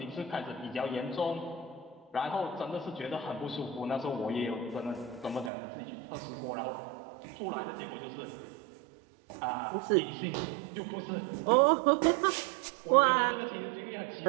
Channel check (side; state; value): left; drops out; at 5.5 s